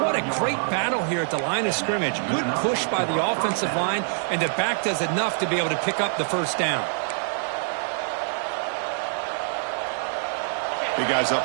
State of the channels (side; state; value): left; silent; digital silence